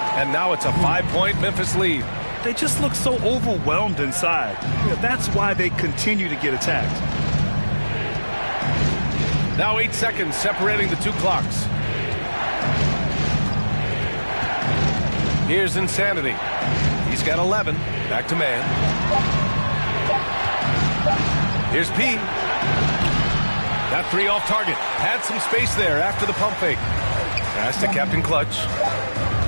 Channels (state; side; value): inverted; both; correlation -1.00